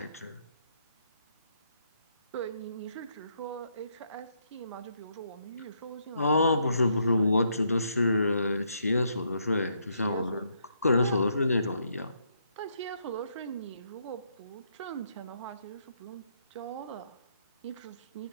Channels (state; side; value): inverted; both; correlation -0.75